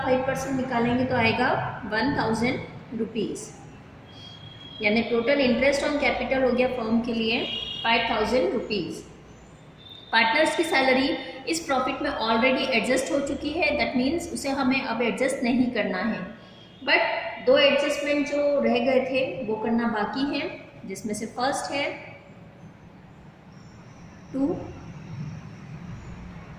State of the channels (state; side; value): identical; both; correlation 1.00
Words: 5% निकालेंगे तो आएगा 1,000 रुपीज़। यानी टोटल इंटरेस्ट ऑन कैपिटल हो गया फर्म के लिए 5,000 रुपीज़। पार्टनर्स की सैलरी इस प्रॉफिट में ऑलरेडी एडजस्ट हो चुकी है, दैट मीन्स उसे हमें अब एडजस्ट नहीं करना है। बट 2 एडजस्टमेंट जो रह गए थे वो करना बाकी है, जिसमें से फर्स्ट है to